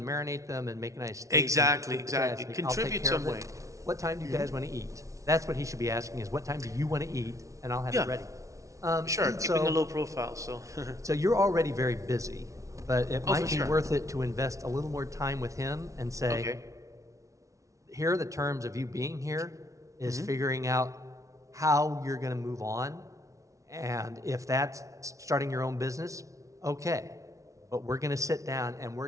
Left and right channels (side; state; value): left; late; 0.15 ms